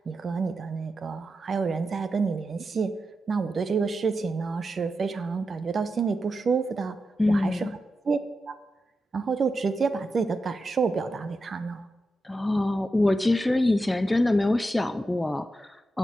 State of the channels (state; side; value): normal; both; correlation 0.89